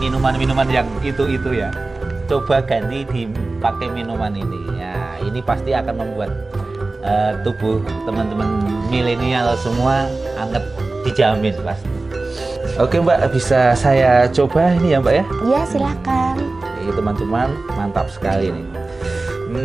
yang itu ya. Coba ganti dipakai minuman ini. Ya, ini pasti akan membuat tubuh teman-teman milenial semua anget, dijamin pasti. Oke Mbak, bisa saya coba ini ya Mbak ya? Iya silakan. Ini teman-teman, mantap sekali nih.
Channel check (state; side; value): quieter; left; 3.3 dB